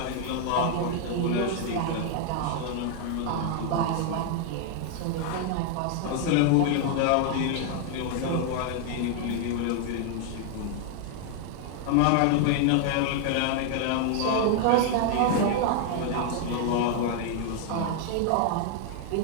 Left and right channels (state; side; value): different; both; correlation 0.00